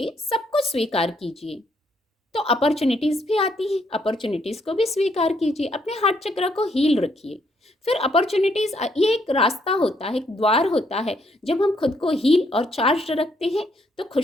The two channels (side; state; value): both; normal; correlation 0.72